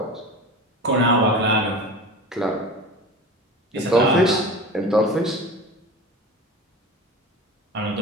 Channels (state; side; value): normal; both; correlation 0.33